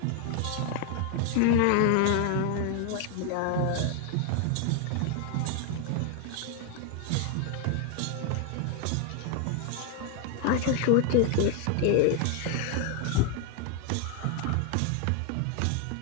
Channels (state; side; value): different; both; correlation 0.01